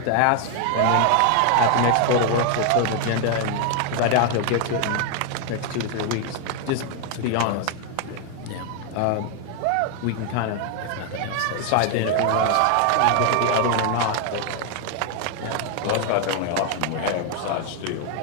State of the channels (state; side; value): different; both; correlation 0.00